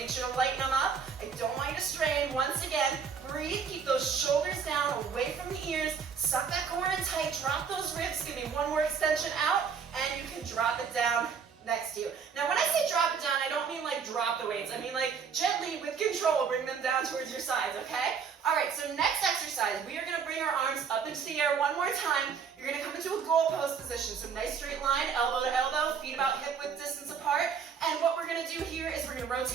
sure to lighten them up. I don't want you to strain. Once again, breathe, keep those shoulders down, away from the ears, suck that core in tight, drop those ribs, give me one more extension out, and you can drop it down next to you. Now, when I say drop it down, I don't mean like drop the weights. I mean like gently, with control, bring them down towards your sides, okay? All right, so next exercise, we are going to bring our arms up into the air one more time. You're going to come into a goal pose position. So nice straight line, elbow to elbow, feet about hip width distance apart. And what we're going to do here is we're going to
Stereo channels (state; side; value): quieter; left; 6.4 dB